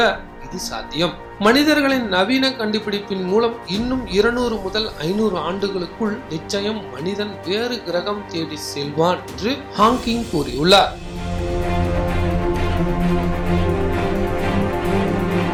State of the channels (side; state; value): both; identical; correlation 1.00